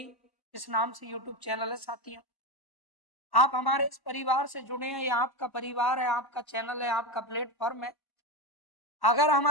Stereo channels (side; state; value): right; late; 1.1 ms